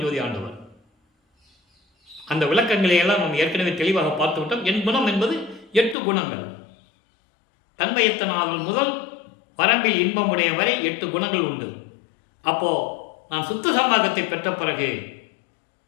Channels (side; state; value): right; drops out; at 6.0 s